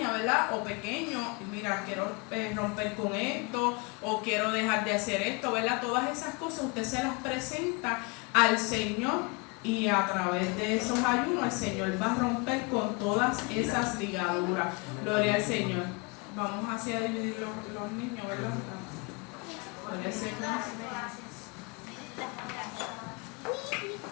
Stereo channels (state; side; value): quieter; right; 30.1 dB